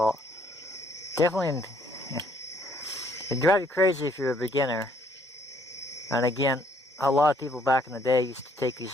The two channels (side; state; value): both; normal; correlation 0.65